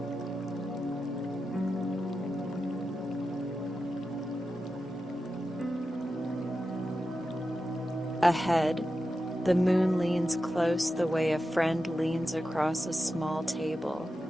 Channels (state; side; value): normal; both; correlation 0.91